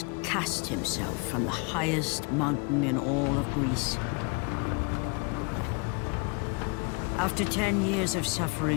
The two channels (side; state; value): right; quieter; 33.7 dB